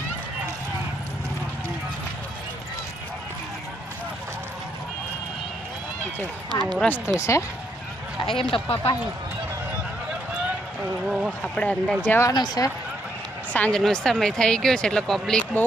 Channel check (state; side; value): normal; both; correlation 0.75